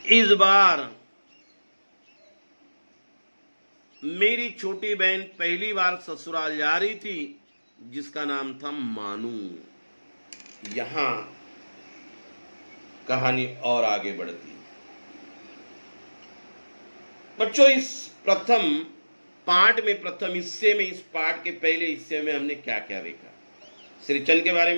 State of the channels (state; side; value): inverted; both; correlation -1.00